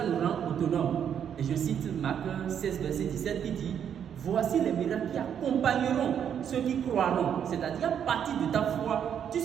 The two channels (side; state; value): left; quieter; 8.6 dB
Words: nous rend autonomes. Et je cite Marc 16, verset 17 qui dit: voici les miracles qui accompagneront ceux qui croiront. C'est-à-dire, à partir de ta foi, tu